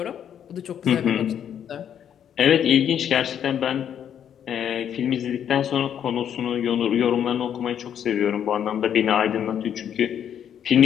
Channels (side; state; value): right; quieter; 9.2 dB